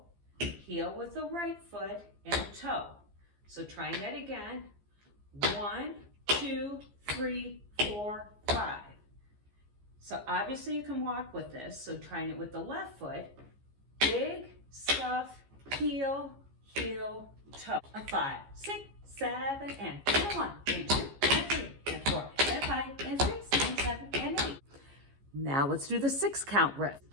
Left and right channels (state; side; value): late; left; 15 ms